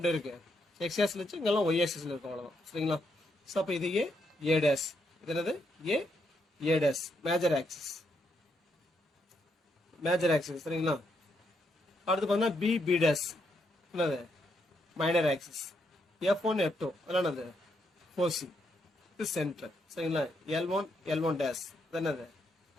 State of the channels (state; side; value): normal; both; correlation 0.78